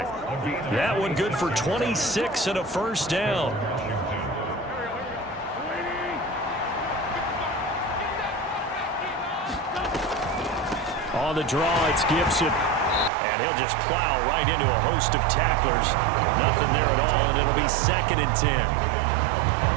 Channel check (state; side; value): drops out; left; at 13.1 s